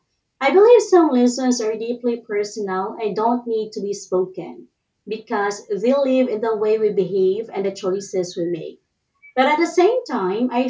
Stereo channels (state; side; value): identical; both; correlation 1.00